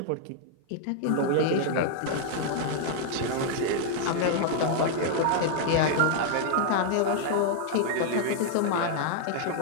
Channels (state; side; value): different; both; correlation 0.00